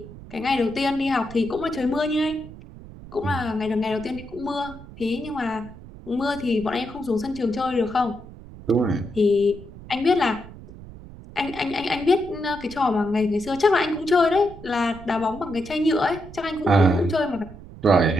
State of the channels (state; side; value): noise; right; rumble, 16 dB below the sound